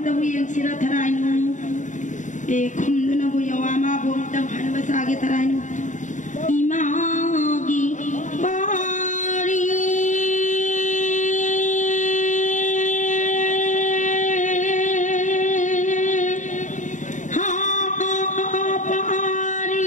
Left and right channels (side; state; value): right; late; 0.36 ms